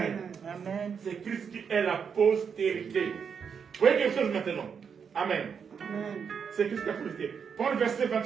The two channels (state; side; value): quieter; left; 6.7 dB